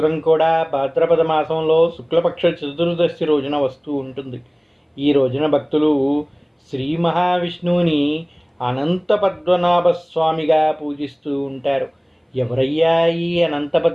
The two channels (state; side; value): identical; both; correlation 1.00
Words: కూడా భాద్రపద మాసంలో శుక్లపక్ష చతుర్దశి రోజున వస్తూ ఉంటుంది. ఈ రోజున భక్తులు శ్రీ మహావిష్ణువుని అనంత పద్మనాభ స్వామిగా పూజిస్తూ ఉంటారు. ఎవరయ్యా ఈ అనంత